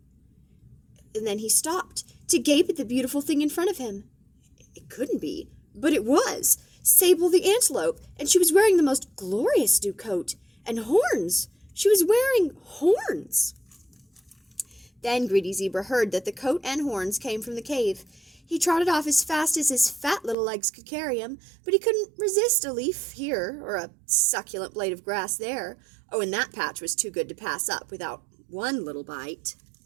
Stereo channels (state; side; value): drops out; left; at 20.4 s